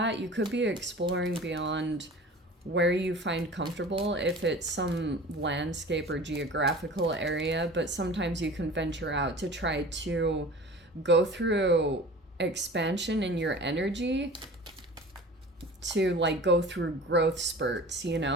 You could be exploring beyond where you find comfortable, if it's some landscape or geographical area, but sometimes you can venture out to try to go through expansion in your energy, to like go through growth spurts, you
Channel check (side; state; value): both; normal; correlation 0.40